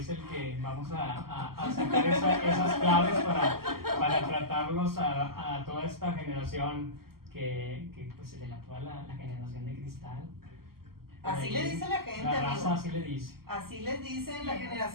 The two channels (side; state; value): left; late; 0.93 ms